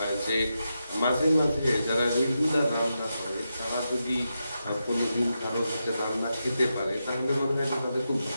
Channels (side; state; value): both; inverted; correlation -0.87